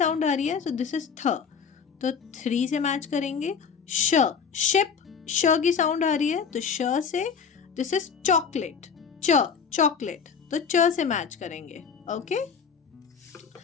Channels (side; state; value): right; quieter; 6.4 dB